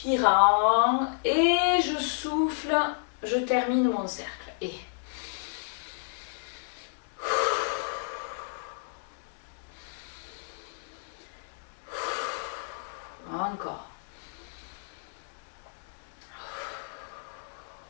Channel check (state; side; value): silent; right; digital silence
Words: Et je souffle, je termine mon cercle. Et encore.